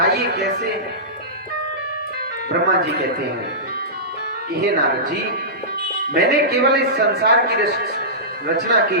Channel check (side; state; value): both; normal; correlation -0.18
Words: कैसे। ब्रह्मा जी कहते हैं कि हे नारद जी, मैंने केवल इस संसार की रचना की